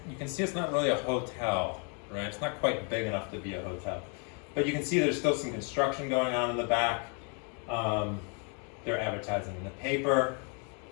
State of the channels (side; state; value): right; quieter; 38.1 dB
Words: can see it's not really a hotel, right? It's not quite big enough to be a hotel. But you can see there's still some construction going on in the back. They're advertising in the paper.